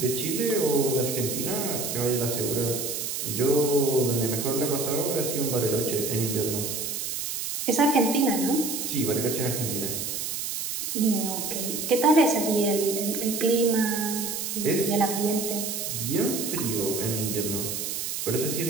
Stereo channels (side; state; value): right; noise; hiss, 3 dB below the sound